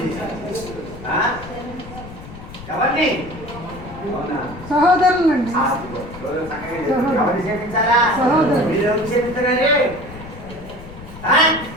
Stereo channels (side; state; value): left; noise; rumble, 15 dB below the sound